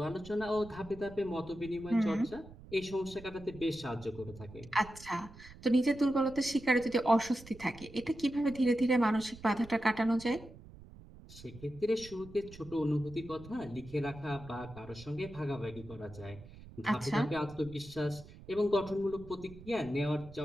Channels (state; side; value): noise; right; rumble, 18 dB below the sound